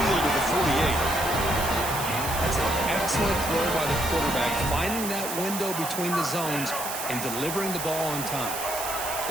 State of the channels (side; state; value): right; noise; hiss, 6 dB below the sound